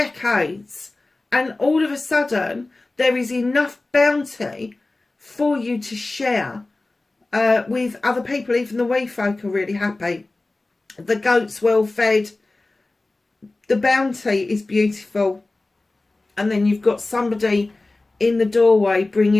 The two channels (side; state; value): right; quieter; 3.1 dB